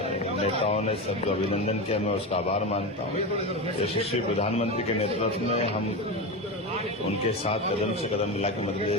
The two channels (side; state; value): both; normal; correlation 0.20